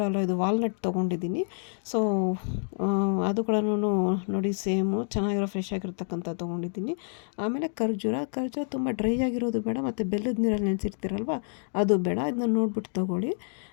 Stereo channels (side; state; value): right; silent; 59 dB below the other